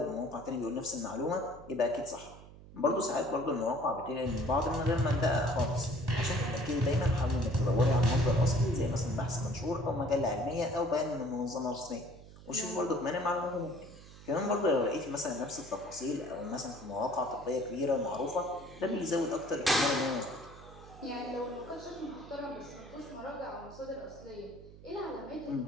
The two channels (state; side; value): noise; right; hum, 18 dB below the sound